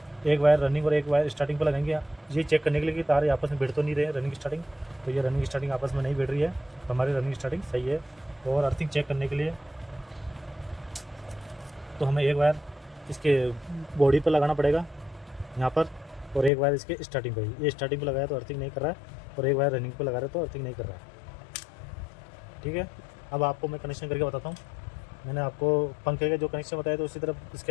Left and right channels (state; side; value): drops out; right; at 16.5 s